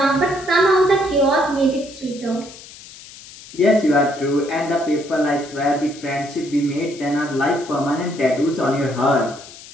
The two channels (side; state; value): left; noise; hiss, 18 dB below the sound